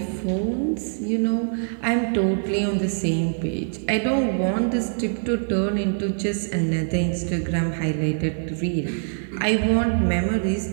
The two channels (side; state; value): left; silent; digital silence